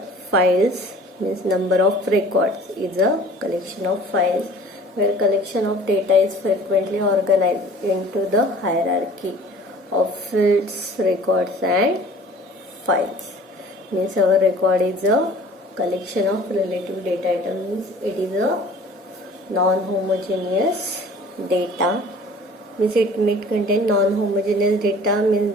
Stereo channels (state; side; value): normal; both; correlation 0.48